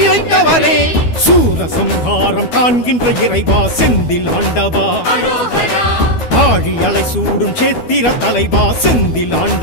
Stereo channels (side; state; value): right; late; 12 ms